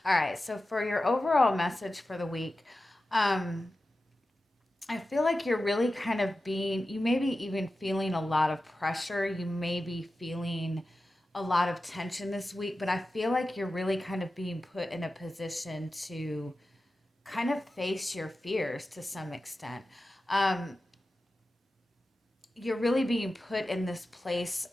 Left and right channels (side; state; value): both; normal; correlation 0.93